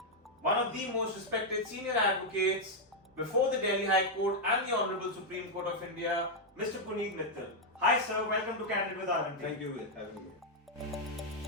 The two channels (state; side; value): normal; both; correlation -0.01